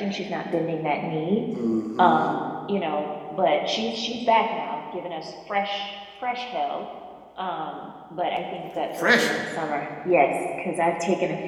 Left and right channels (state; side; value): identical; both; correlation 1.00